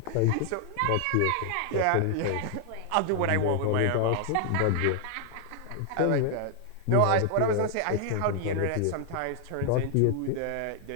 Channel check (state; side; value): different; both; correlation 0.00